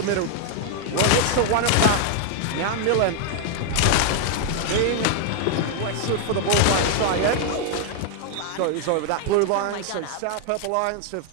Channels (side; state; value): both; different; correlation 0.00